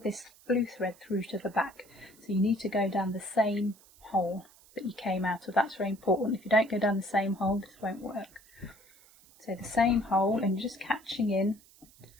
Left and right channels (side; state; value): right; noise; hiss, 26 dB below the sound